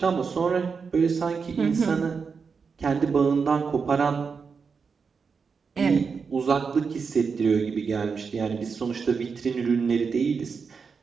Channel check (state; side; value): quieter; left; 5.5 dB